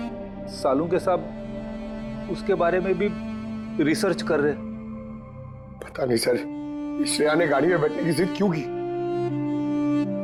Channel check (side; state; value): both; identical; correlation 1.00